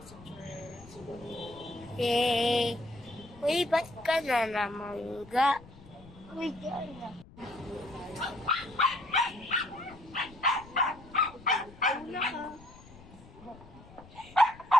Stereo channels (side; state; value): left; noise; rumble, 20 dB below the sound